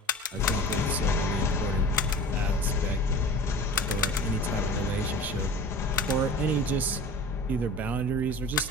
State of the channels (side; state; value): both; normal; correlation 0.39